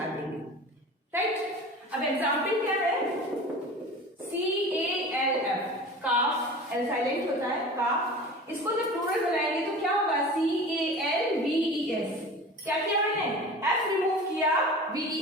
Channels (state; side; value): normal; both; correlation 0.37